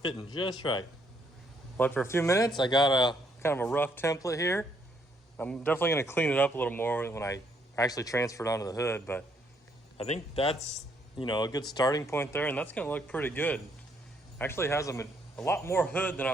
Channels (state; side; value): normal; both; correlation 0.70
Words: fitting just right. But for a few minutes, I got a kind of a rough template here. I'm definitely gonna clean it up a little more when I actually transfer it onto the hood, but I think that's, you know, a good starting point there, and that's gonna look pretty good. Actually has a lot more hood than I